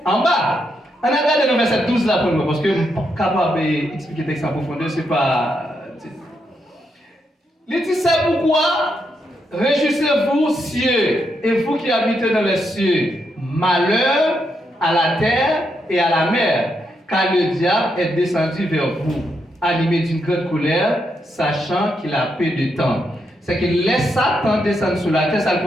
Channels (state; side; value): normal; both; correlation 0.81